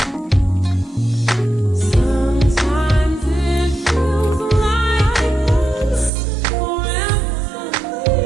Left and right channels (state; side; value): drops out; left; at 6.1 s